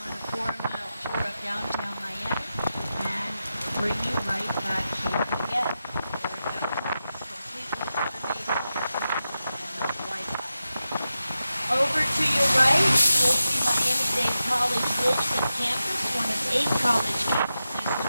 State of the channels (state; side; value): inverted; both; correlation -0.90